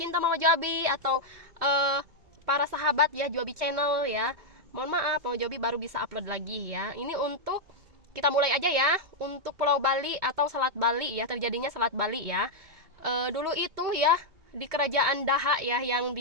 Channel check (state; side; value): late; left; 2.2 ms